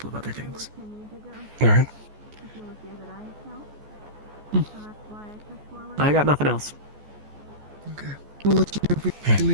of other things. Alright. I got nothing else. Okay. We'll let you know if we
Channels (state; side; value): late; left; 14 ms